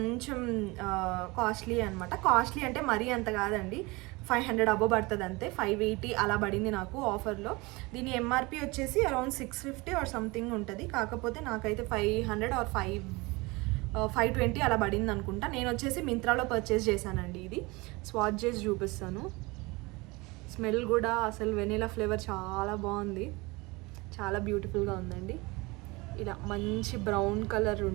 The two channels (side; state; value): left; quieter; 24.3 dB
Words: కాస్ట్లీ అనమాట. కాస్ట్లీ అంటే మరీ అంత కాదండి, 500 అబో పడుతుంది అంతే. 580 అలా పడింది నాకు ఆఫర్లో. దీని ఎంఆర్పి వచ్చేసి అరౌండ్ 650 ఆర్ సంథింగ్ ఉంటుంది. కాకపోతే నాకైతే 500 ఆర్ 520 అలా పడింది అనుకుంటా. నేను వచ్చేసి మింత్రాలో పర్చేస్ చేశానండి. ఇది స్వాచ్ చేసి చూపిస్తాను. స్మెల్ కూడా అసలు వెనీలా ఫ్లేవర్ చాలా బాగుంది, చాలా బ్యూటిఫుల్గా ఉందండి. ఇలా మంచి బ్రౌన్ కలర్